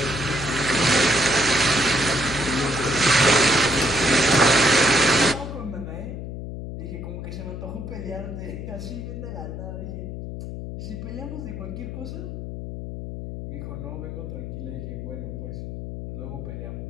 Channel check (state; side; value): noise; left; hum, 7 dB below the sound